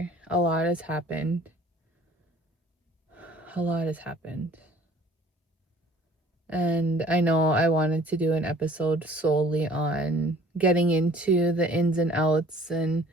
A lot has happened. A lot has happened. And I know I wanted to do an episode solely on getting into the ins and outs and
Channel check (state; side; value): normal; both; correlation 0.52